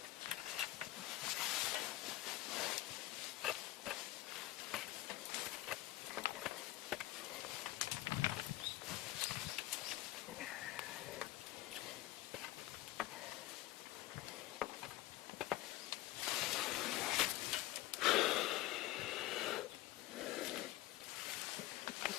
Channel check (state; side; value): quieter; right; 16.3 dB